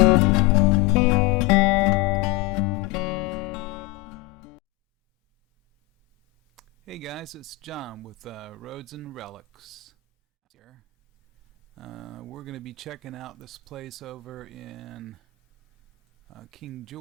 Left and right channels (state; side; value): quieter; right; 16.4 dB